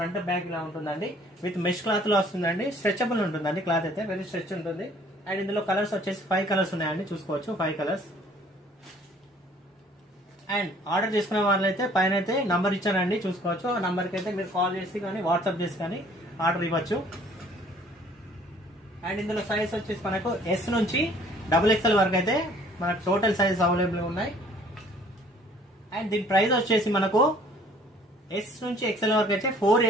బ్యాక్ ఇలా ఉంటుందండి. విత్ మెష్ క్లాత్ లో వస్తుందండి. స్ట్రెచబుల్ ఉంటుందండి. క్లాత్ అయితే వెరీ స్ట్రెచ్ ఉంటుంది. అండ్ ఇందులో కలర్స్ వచ్చేసి 5 కలర్స్ ఉన్నాయండి. చూసుకోవచ్చు 5 కలర్స్. అండ్ ఆర్డర్ చేసుకునే వాళ్ళైతే పైన అయితే నంబర్ ఇచ్చానండి, చూసుకోవచ్చు. ఆ నంబర్ కి అయితే మీరు కాల్ చేసి కానీ వాట్సాప్ చేసి కానీ ఆర్డర్ ఇవ్వచ్చు. అండ్ ఇందులో సైజ్ వచ్చేసి మనకు S నుంచి XXL వరకు అయితే మనకు టోటల్ సైజ్ అవైలబుల్ ఉన్నాయి. అండ్ దీని ప్రైస్ వచ్చేసి మనకు S నుంచి XL వరకు అయితే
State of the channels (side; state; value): both; normal; correlation 0.56